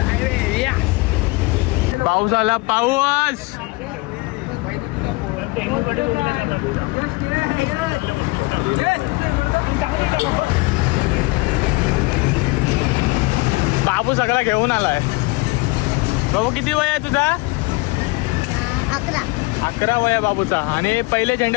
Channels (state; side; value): quieter; right; 24.7 dB